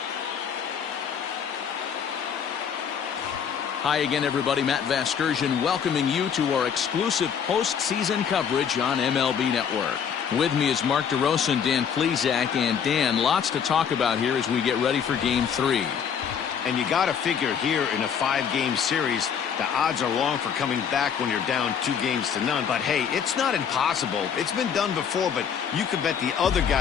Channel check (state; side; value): quieter; right; 7.6 dB